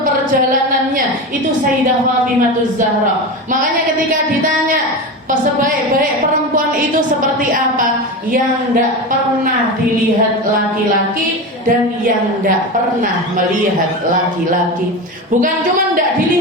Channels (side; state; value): both; normal; correlation 0.23